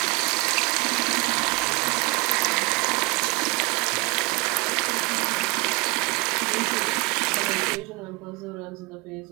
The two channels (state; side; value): quieter; left; 27.1 dB